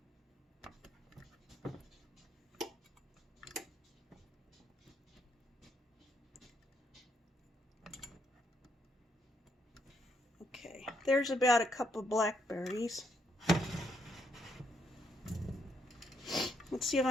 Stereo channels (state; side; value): normal; both; correlation 0.75